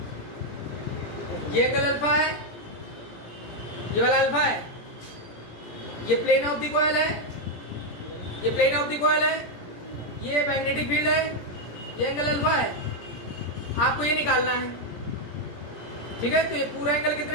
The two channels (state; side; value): late; right; 17 ms